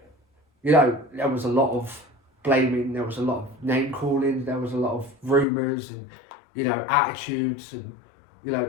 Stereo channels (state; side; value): drops out; right; at 5.5 s